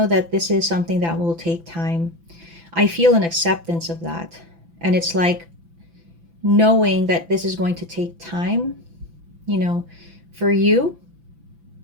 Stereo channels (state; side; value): late; left; 5.9 ms